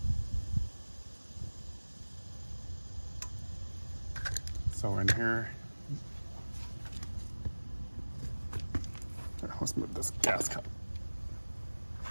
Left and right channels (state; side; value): inverted; both; correlation -1.00